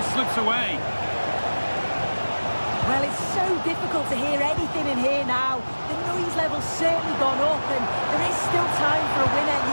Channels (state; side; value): inverted; both; correlation -1.00